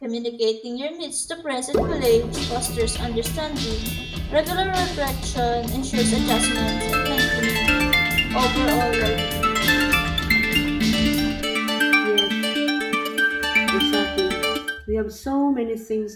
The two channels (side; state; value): both; identical; correlation 1.00